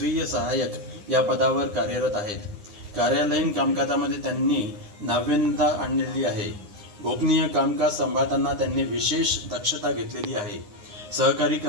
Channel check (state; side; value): late; left; 9.7 ms